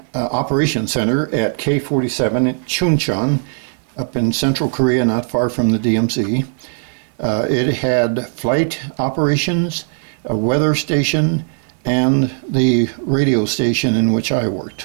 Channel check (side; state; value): left; silent; 64 dB below the other